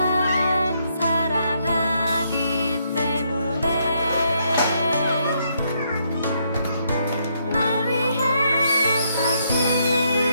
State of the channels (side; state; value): both; inverted; correlation -0.75